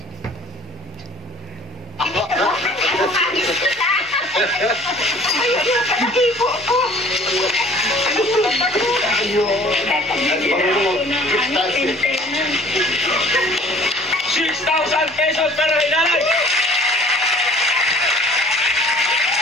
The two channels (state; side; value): normal; both; correlation 0.51